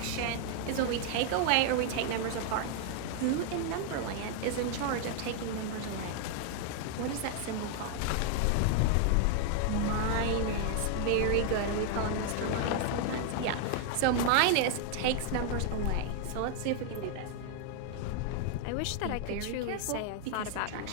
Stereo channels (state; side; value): different; both; correlation 0.00